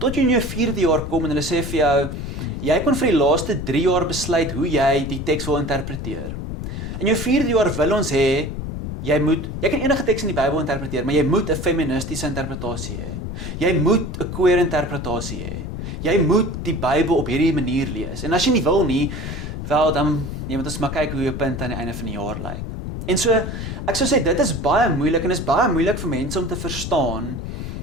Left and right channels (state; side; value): noise; left; rumble, 6 dB below the sound